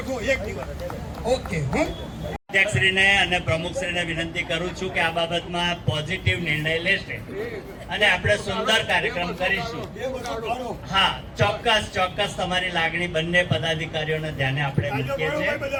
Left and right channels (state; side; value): identical; both; correlation 1.00